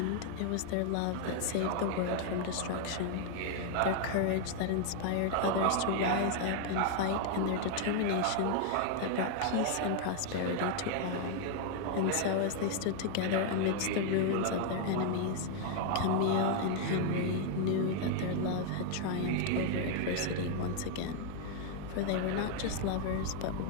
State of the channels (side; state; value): both; different; correlation 0.00